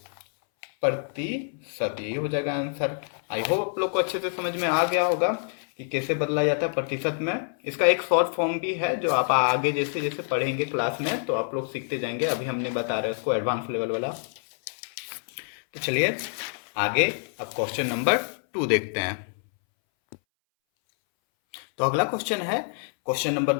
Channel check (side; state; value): right; silent; 60 dB below the other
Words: यही हो जाएगा आंसर। आई होप आप लोग को अच्छे से समझ में आ गया होगा कि कैसे बदला जाता है प्रतिशत में। इसका एक शॉर्ट फॉर्म भी है जो आप आगे जैसे जैसे पढ़ेंगे क्लास में तो आप लोग सीखते जाएंगे, अभी हम नहीं बता रहे उसको, एडवांस लेवल वाला। तो चलिए आगे अब क्वेश्चन नंबर 2 देखते हैं। तो अगला क्वेश्चन है क्वेश्चन नंबर